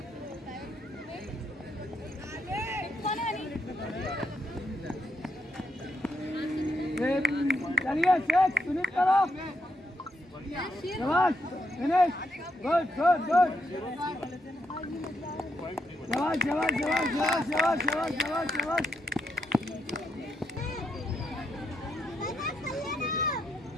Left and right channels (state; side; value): normal; both; correlation 0.80